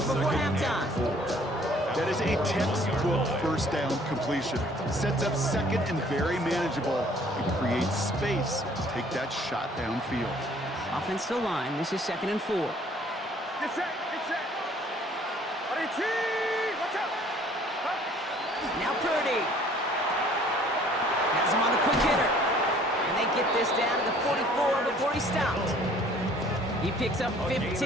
before halftime. That is a textbook first down completion. Sets up 2nd and very manageable and creates space to take that shot downfield. Offensive line, this is 2nd and 4. Get set, get set. Ready, cheese, watch out. Now Purdy has him on the quick hitter. And they get this down to the 44 before he stopped. He picks up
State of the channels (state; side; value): normal; both; correlation 0.56